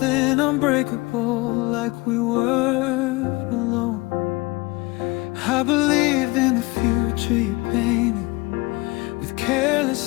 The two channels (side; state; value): right; quieter; 23.5 dB